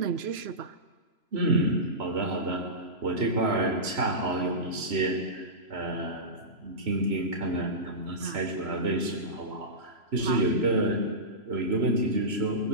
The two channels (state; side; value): late; left; 3.0 ms